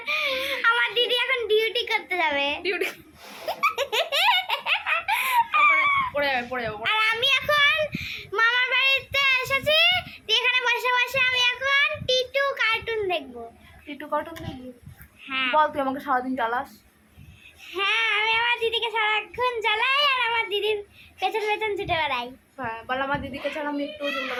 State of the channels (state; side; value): identical; both; correlation 1.00